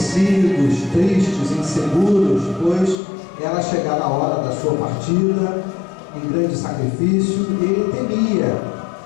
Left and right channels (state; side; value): drops out; right; at 3.0 s